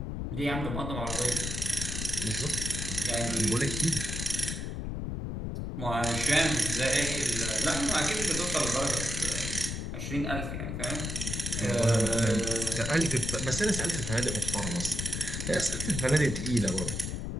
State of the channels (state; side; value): noise; left; rumble, 4 dB below the sound